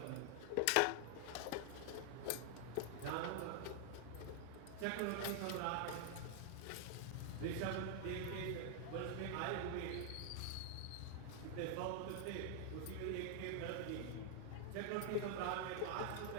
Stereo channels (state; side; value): different; both; correlation 0.00